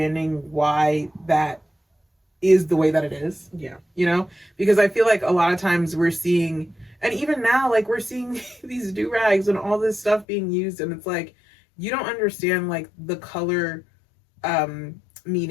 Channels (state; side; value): drops out; right; at 10.2 s